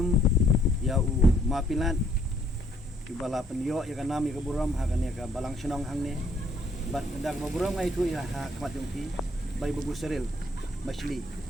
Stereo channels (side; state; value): both; normal; correlation 0.66